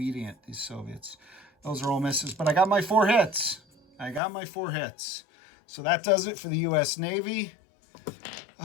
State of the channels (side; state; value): right; drops out; at 4.2 s